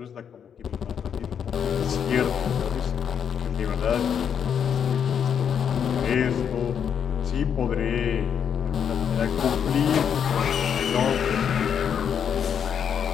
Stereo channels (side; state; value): right; quieter; 7.9 dB